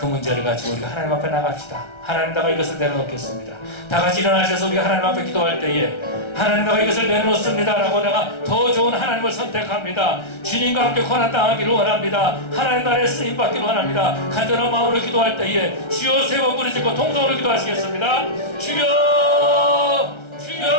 문제를 가지고 우리가 하나님 앞에 나갑시다. 하나님, 내가 이것을 내려놓겠습니다. 다 같이 일어나셔서 우리가 하나님 앞에 기도할 때에 하나님, 내가 이것을 내려놓습니다 라고 내가 더 좋은 하나님을 선택합니다. 주님과 함께 고난당하기를 원합니다. 하나님 나라에 쓰임받기를 원합니다. 간절한 마음으로 기도할 때에 주여 세 번 부르짖고 통성으로 기도하시겠습니다. 주여,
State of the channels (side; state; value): right; late; 1.3 ms